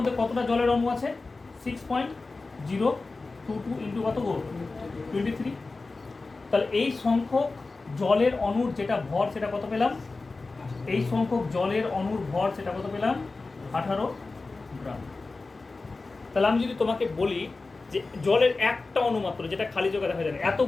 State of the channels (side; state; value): right; quieter; 3.7 dB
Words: কতটা জলের অণু আছে, 6.022 ইন্টু কত গো 23, তাহলে এই সংখ্যক জলের অণুর যেটা ভর সেটা কত পেলাম, এই সংখ্যক জলের অণুর ভর সেটা কত পেলাম 18 গ্রাম। তাহলে আমি যদি তোমাকে বলি যে জলের একটা অণু মাত্র, যেটা খালি জায়গা দেখা যায় না,